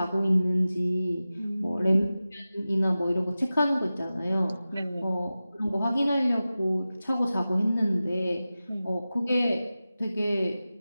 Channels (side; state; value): both; inverted; correlation -0.95